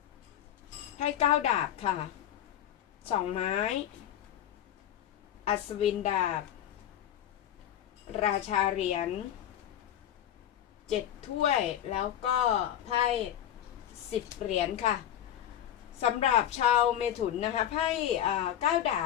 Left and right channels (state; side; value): quieter; right; 11.0 dB